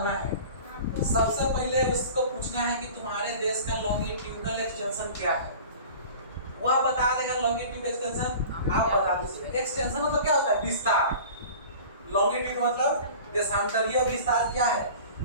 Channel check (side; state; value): both; inverted; correlation -0.40